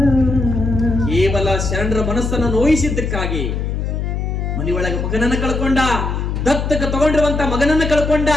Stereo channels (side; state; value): left; noise; hum, 2 dB below the sound